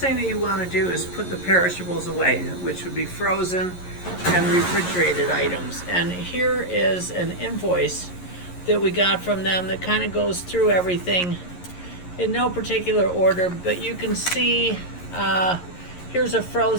that you want to do is put the perishables away, which would be frozen and refrigerated items. And here is an invoice that we got from them that kind of goes through everything in no particular order, but you can see here's a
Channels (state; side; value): late; right; 11 ms